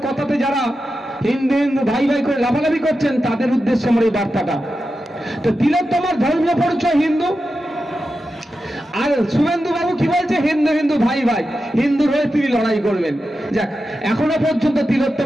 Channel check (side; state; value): both; normal; correlation 0.90